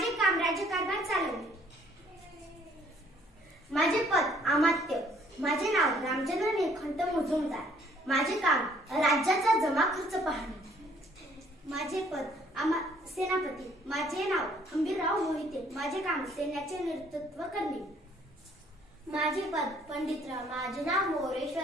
काम राज्यकारभार चालवणे। माझे पद अमात्य, माझे नाव रामचंद्र निळकंठ मुजुमदार, माझे काम राज्याचा जमा खर्च पाहणे। माझे पद सेनापती, माझे नाव हंबीरराव मोहिते, माझे काम सैन्याचे नेतृत्व करणे। माझे पद पंडितराव, माझे नाव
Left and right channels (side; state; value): both; normal; correlation 0.62